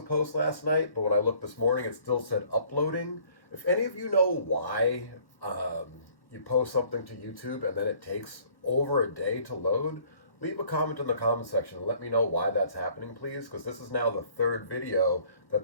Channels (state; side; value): late; right; 1.1 ms